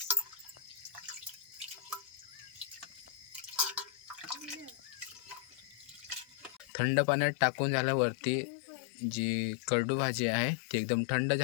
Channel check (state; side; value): drops out; right; at 6.7 s